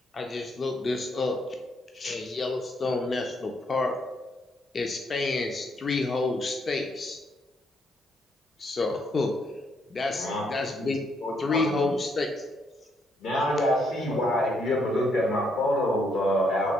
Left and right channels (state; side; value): normal; both; correlation 0.73